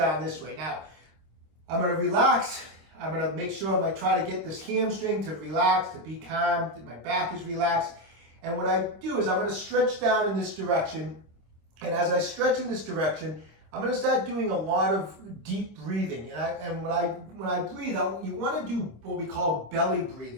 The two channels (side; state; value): left; late; 26 ms